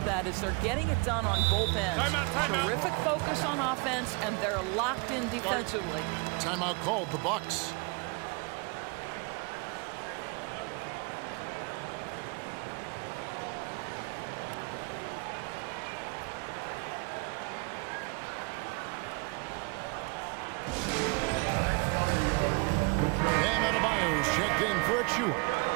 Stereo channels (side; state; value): left; quieter; 30.4 dB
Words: that is they're getting it done on both ends. Terrific focus on offense, and they're locked in defensively. Timeout called, the Bucks. Bam Adebayo's checked in for Achua.